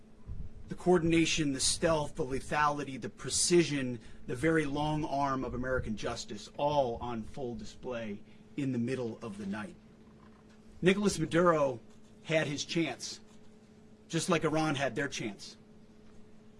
The coordination, the stealth, the lethality, the precision, the very long arm of American justice, all on full display in the middle of the night. Nicolas Maduro had his chance, just like Iran had their chance,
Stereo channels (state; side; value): identical; both; correlation 1.00